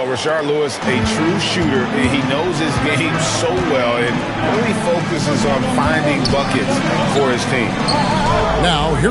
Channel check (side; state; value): both; identical; correlation 1.00